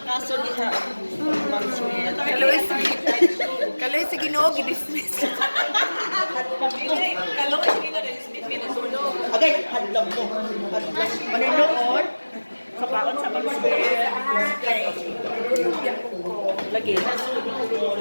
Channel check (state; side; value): inverted; both; correlation -1.00